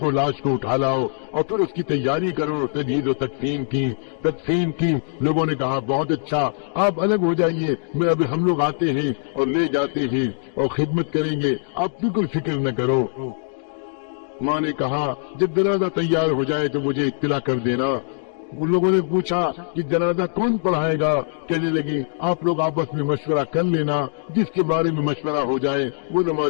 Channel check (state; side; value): silent; right; digital silence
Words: لاش کو اٹھا لاؤ اور پھر اس کی تیاری کرو۔ تجہیز و تقسیم کی۔ لوگوں نے کہا بہت اچھا، آپ الگ ہو جائیے، میں ابھی ہم لوگ آتے ہیں اور لے جاتے ہیں اور خدمت کریں گے، آپ بالکل فکر نہ کرو۔ ماں نے کہا جب جنازہ تیار ہو جائے تو مجھے اطلاع کر دینا۔ ان لوگوں نے پوچھا کہ جنازہ کون پڑھائے گا؟ کہنے لگی آپ لوگ آپس میں مشورہ کر لینا، جس کے بارے میں مشورہ ہو جائے وہ